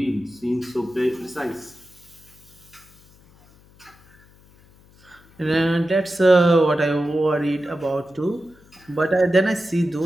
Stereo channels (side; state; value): left; noise; hum, 28 dB below the sound